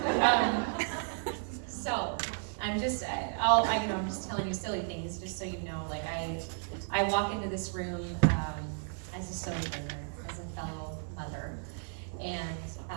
So I'm just, I'm just telling you silly things, just so you know. Like, I walk into this room as a sojourner, as a fellow mother, and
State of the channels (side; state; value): left; silent; 55 dB below the other